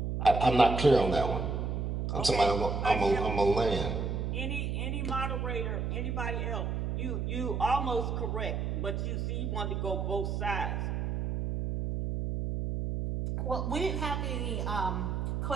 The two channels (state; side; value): noise; right; hum, 1 dB below the sound